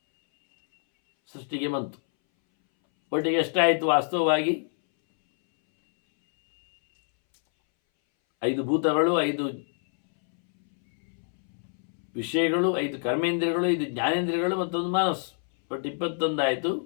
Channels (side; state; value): right; silent; 61 dB below the other